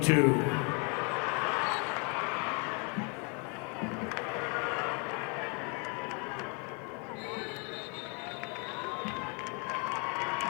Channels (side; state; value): right; quieter; 34.5 dB